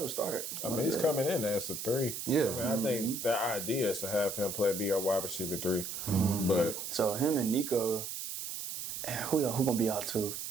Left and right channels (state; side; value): noise; right; hiss, 6 dB below the sound